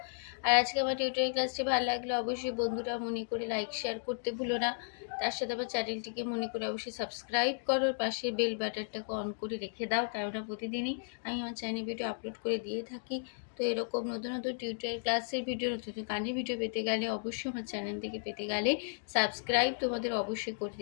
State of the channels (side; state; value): right; silent; digital silence